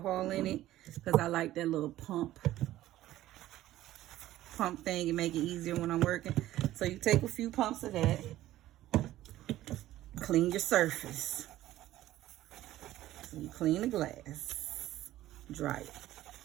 in it because I like that little pump thing and make it easier when I'm working. So you take a few pumps of that. Clean your surface. So you clean the glass. Dry it.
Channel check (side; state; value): left; quieter; 14.6 dB